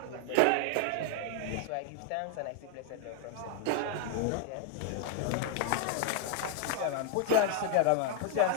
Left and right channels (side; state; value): both; different; correlation 0.00